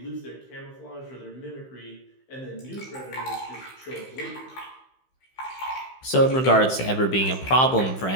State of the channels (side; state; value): right; late; 15 ms